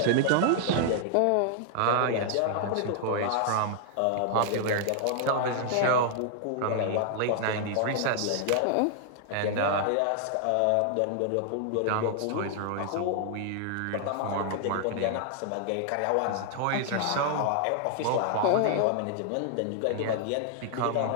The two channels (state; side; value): different; both; correlation -0.01